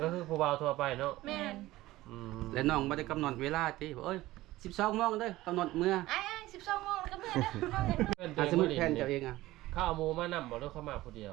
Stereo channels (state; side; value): quieter; left; 17.2 dB